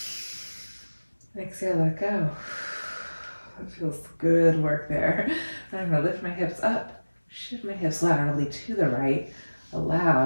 Exhale, let go. That feels good work there. I'm going to lift my hips up, shift my hips laterally to the right,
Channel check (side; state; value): both; inverted; correlation -1.00